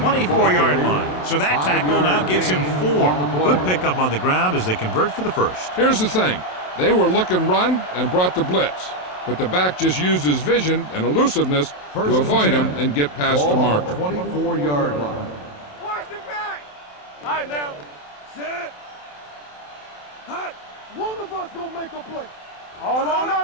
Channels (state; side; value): late; right; 27 ms